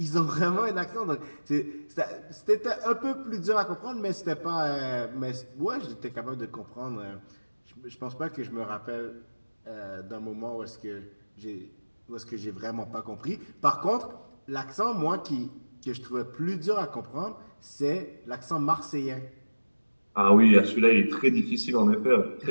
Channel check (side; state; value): both; inverted; correlation -1.00